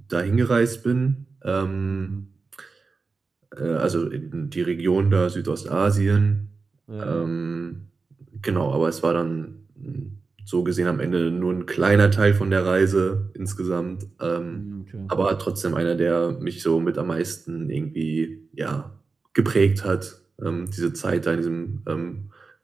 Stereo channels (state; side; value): quieter; left; 4.3 dB